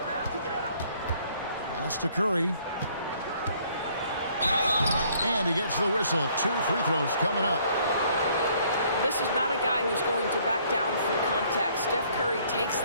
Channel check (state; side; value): inverted; both; correlation -0.62